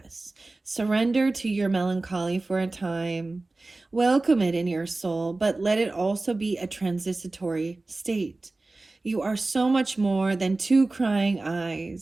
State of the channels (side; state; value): left; quieter; 3.2 dB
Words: surrender to your melancholy for a time. Welcome it in your soul, but let it also be a transitory state. You are so much more than 2 crying